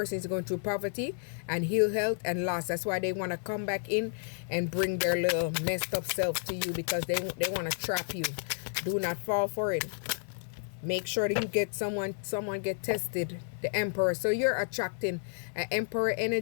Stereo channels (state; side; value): silent; right; 57 dB below the other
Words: is going through poverty and ill health and loss. That's why they want to come back in and bring their little messed up self to you, because they want to trap you. Do not fall for it. Make sure that you get someone get tested. The Emperor. So you're attracting an Emperor